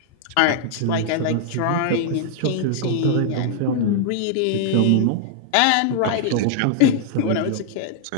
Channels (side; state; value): both; different; correlation -0.01